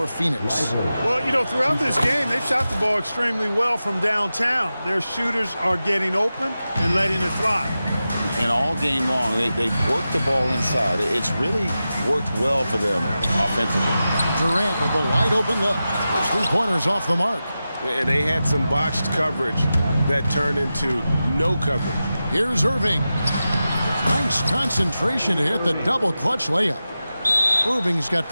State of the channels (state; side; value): inverted; both; correlation -0.93